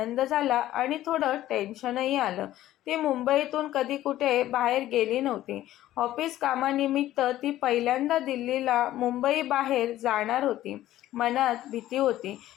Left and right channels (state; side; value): quieter; right; 14.1 dB